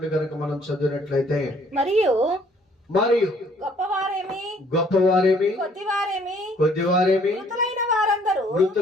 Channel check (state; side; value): normal; both; correlation 0.61